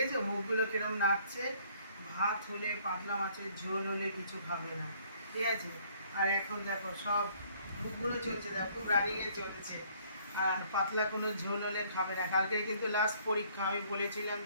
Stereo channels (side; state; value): both; inverted; correlation -0.61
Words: মুখগুলো কিরম নাচছে। ভাত হলে, পাতলা মাছের ঝোল হলে কিছু খাবে না, ঠিক আছে। আর এখন দেখো সব মুখগুলো চলছে, দেখো খুব রানিংয়ে চলছে। আর পাতলা কোনো ঝোল হলে খাবে না। কালকে কিন্তু লাস্ট পরীক্ষা, আমি বলেছিলাম